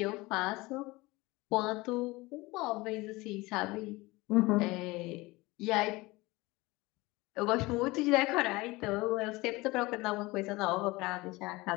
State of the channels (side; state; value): right; quieter; 21.8 dB